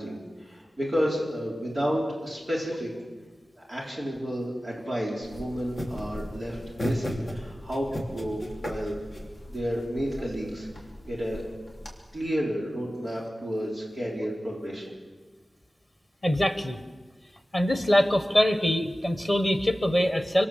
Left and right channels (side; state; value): both; normal; correlation 0.96